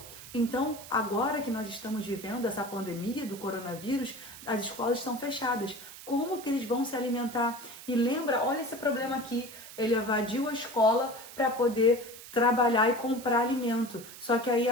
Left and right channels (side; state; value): right; noise; hiss, 15 dB below the sound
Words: Então, agora que nós estamos vivendo essa pandemia do coronavírus, as escolas estão fechadas. Como que eles vão se alimentar? E lembra, olha esse problema aqui, ele evadiu a escola para poder trabalhar e comprar alimento. Só que aí